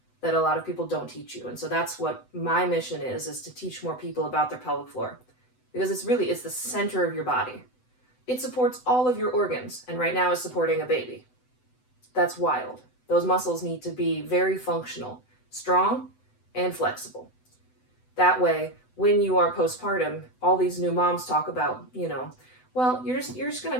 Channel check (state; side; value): late; right; 7.9 ms